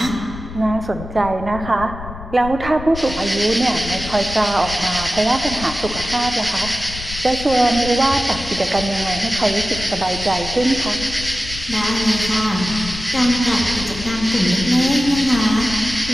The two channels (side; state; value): left; noise; rumble, 11 dB below the sound